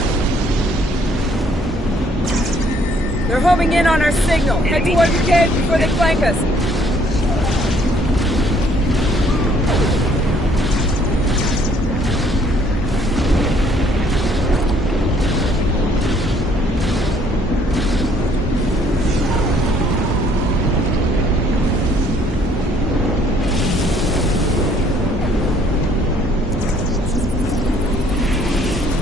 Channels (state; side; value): normal; both; correlation 0.62